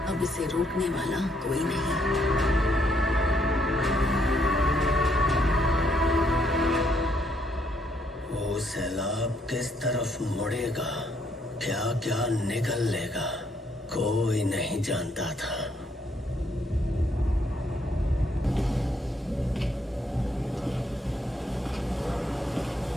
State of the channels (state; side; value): normal; both; correlation 0.72